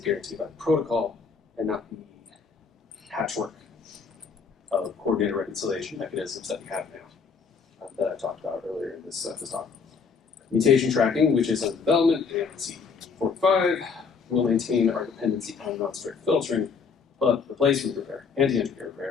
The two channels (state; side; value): quieter; right; 5.5 dB